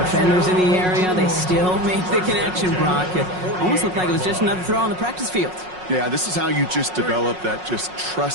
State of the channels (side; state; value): left; late; 5.5 ms